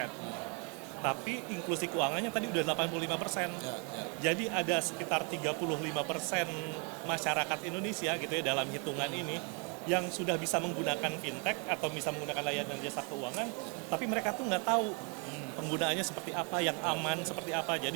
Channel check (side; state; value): left; quieter; 35.7 dB